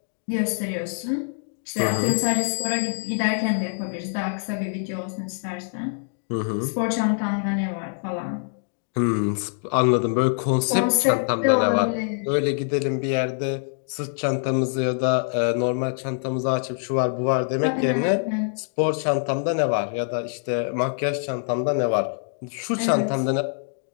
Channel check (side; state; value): right; silent; digital silence